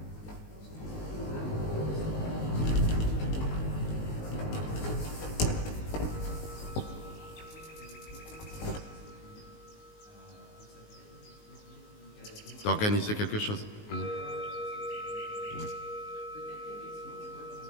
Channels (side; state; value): right; late; 19 ms